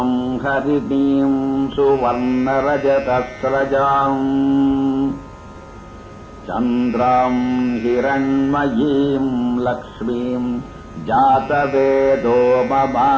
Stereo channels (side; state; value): both; identical; correlation 1.00